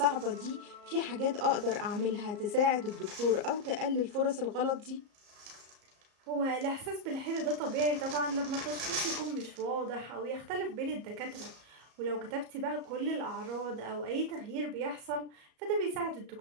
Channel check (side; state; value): left; late; 34 ms